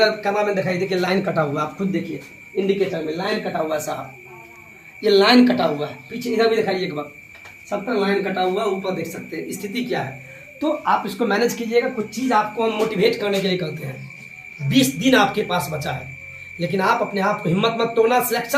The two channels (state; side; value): identical; both; correlation 1.00